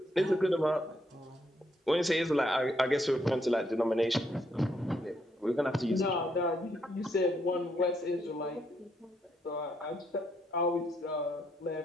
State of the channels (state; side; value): normal; both; correlation 0.75